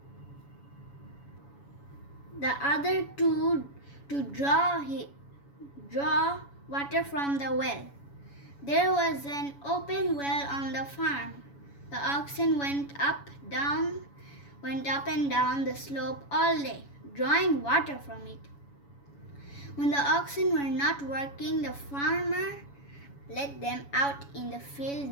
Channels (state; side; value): late; right; 7.1 ms